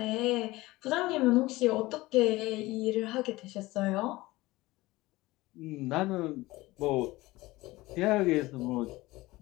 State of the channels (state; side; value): quieter; right; 19.6 dB